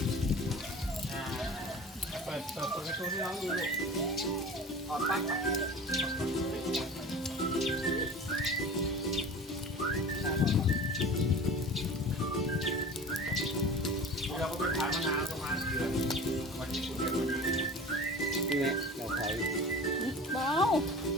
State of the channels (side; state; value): both; normal; correlation 0.37